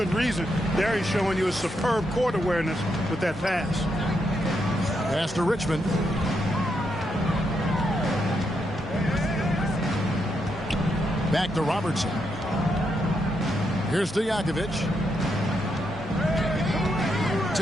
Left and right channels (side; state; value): both; normal; correlation 0.81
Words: reason. There he's showing you a superb court awareness with that pass. Pass to Richmond. Back to Robertson. Here's to Jakovic.